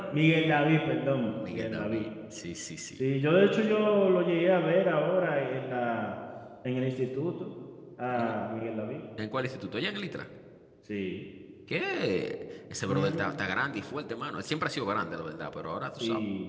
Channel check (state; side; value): identical; both; correlation 1.00